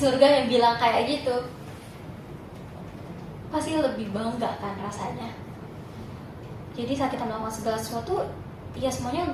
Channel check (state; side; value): identical; both; correlation 1.00